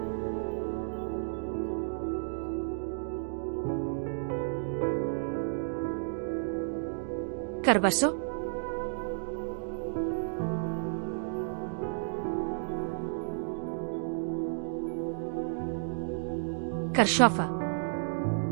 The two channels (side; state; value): left; silent; digital silence